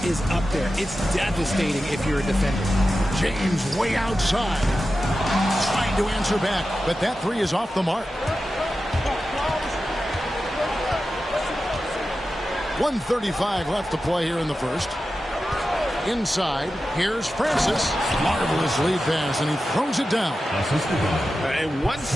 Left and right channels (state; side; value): normal; both; correlation 0.92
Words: is up there. It's devastating if you're a defender. James way outside. Trying to answer back, but that 3 is off the mark. 1:35 left to play here in the first. Inside, here's Francis. Marvelous lead pass, and he throws it down. And one